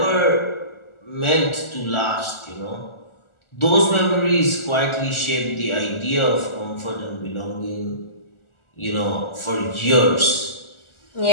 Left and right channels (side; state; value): right; late; 1.4 ms